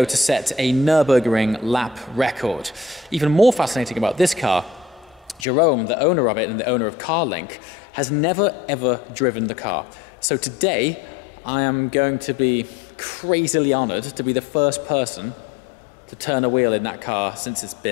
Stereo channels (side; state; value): right; drops out; at 5.5 s